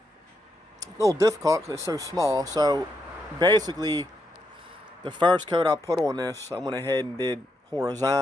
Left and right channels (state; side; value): normal; both; correlation 0.81